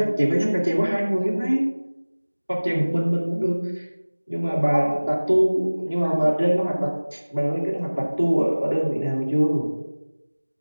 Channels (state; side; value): inverted; both; correlation -1.00